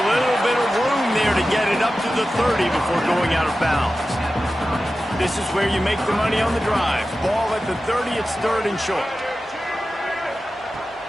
little bit of room there to get it up to the 30 before going out of bounds. This is where you make the money on the drive. Ball at the 30, it's 3rd and short.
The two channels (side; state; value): both; normal; correlation 0.94